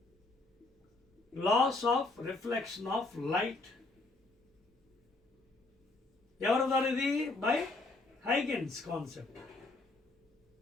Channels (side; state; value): right; quieter; 3.2 dB